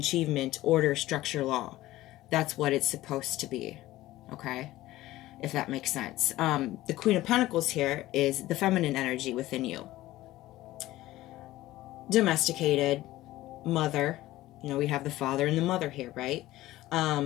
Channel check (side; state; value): right; quieter; 16.4 dB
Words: order, structure, law. That's what it's supposed to be. Okay? If that makes sense. The Queen of Pentacles here is the feminine energy within you. Domesticated, mother. We have the father and the mother here, right?